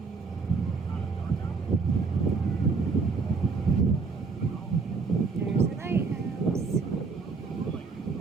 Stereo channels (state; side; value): quieter; left; 4.7 dB